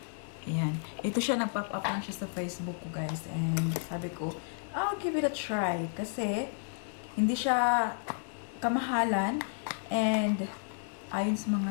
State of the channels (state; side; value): silent; right; digital silence